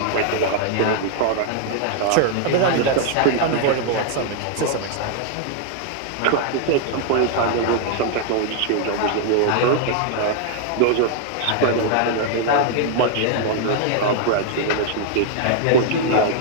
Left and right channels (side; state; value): both; different; correlation 0.00